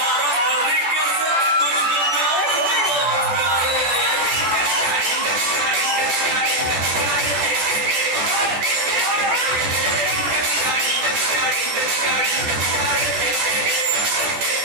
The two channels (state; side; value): late; left; 14 ms